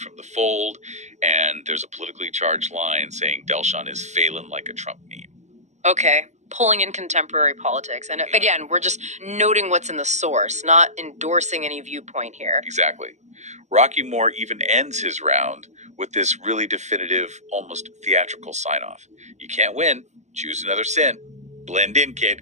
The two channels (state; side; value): late; left; 0.34 ms